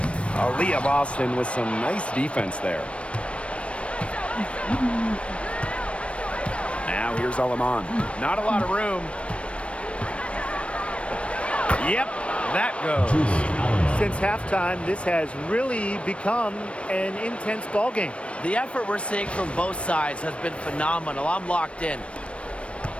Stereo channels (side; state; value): right; late; 0.061 ms